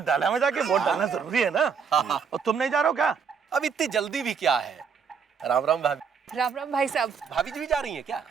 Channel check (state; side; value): quieter; left; 6.3 dB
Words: डाला में जाके, वोट डालना जरूरी है ना। और तुम नहीं जा रहे हो क्या? अब इतनी जल्दी भी क्या है? राम राम भाभी। राम राम भाई साहब। भाभी जी भी जा रही हैं क्या?